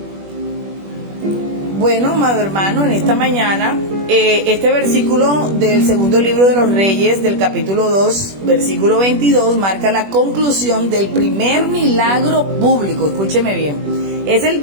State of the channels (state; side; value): late; left; 21 ms